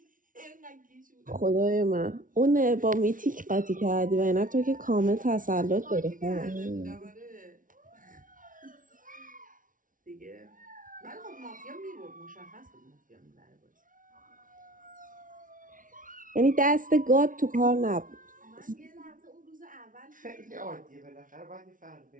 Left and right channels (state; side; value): late; left; 0.38 ms